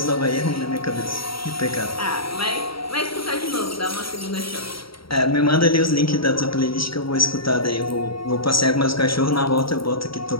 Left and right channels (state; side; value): late; right; 0.75 ms